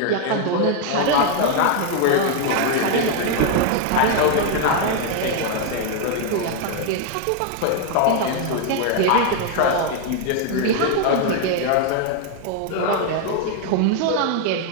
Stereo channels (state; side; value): different; both; correlation 0.01